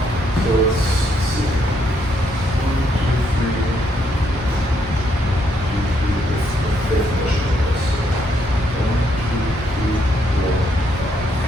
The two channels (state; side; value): normal; both; correlation 0.74